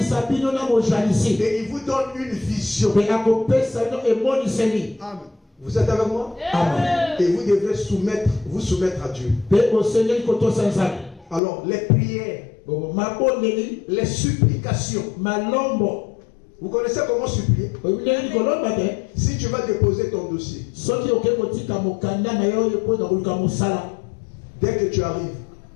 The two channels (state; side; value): drops out; right; at 11.4 s